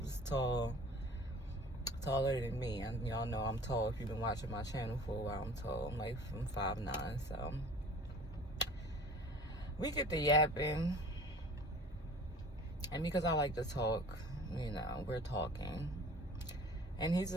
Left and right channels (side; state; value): both; normal; correlation 0.45